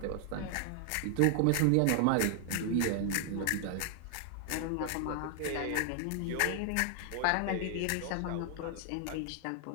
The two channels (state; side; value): different; both; correlation 0.00